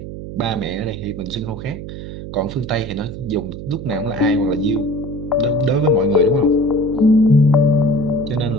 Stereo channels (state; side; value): noise; right; hum, 10 dB below the sound